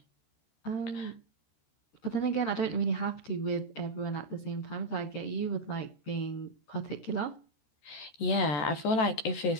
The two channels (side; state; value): right; late; 13 ms